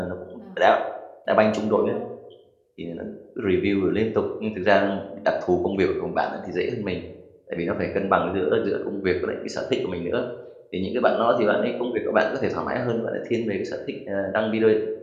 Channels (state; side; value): identical; both; correlation 1.00